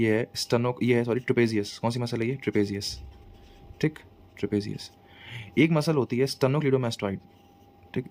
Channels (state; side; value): identical; both; correlation 1.00